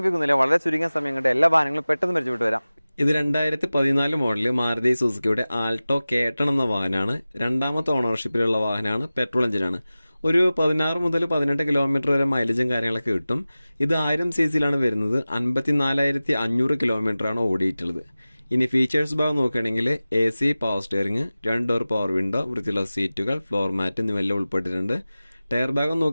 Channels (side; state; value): both; inverted; correlation -0.97